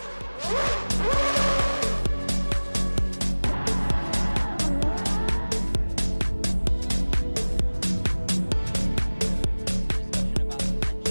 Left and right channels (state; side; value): inverted; both; correlation -1.00